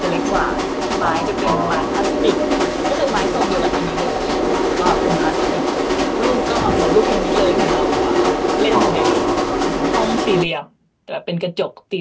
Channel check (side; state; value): both; identical; correlation 1.00